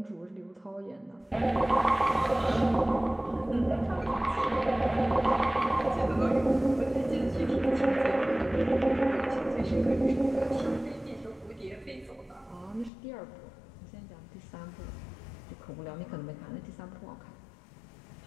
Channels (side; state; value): right; drops out; at 12.9 s